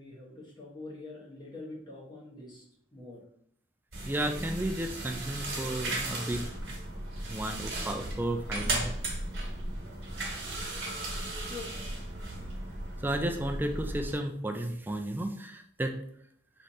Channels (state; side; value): normal; both; correlation 0.63